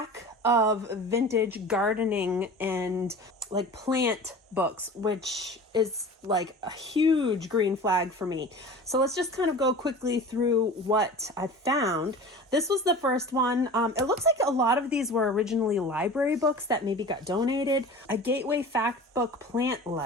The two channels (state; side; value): normal; both; correlation 0.37